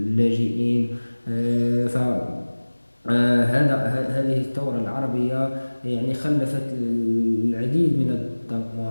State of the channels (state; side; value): inverted; both; correlation -1.00